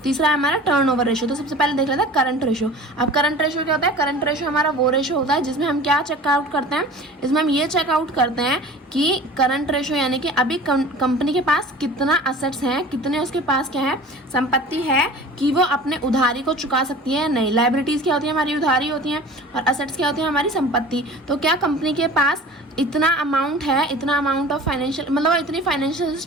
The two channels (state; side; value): normal; both; correlation 0.41